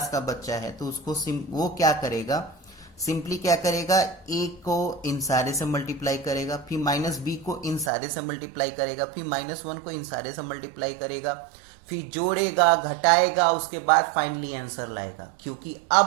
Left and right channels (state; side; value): drops out; left; at 7.9 s